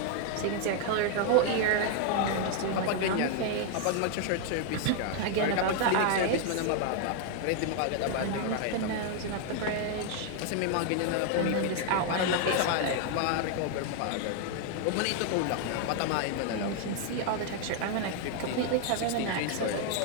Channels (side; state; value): both; different; correlation 0.00